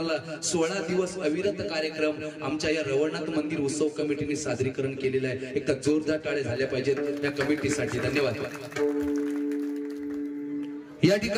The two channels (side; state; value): both; identical; correlation 1.00